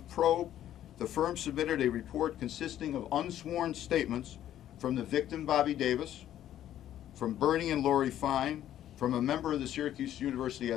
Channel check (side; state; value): right; quieter; 11.7 dB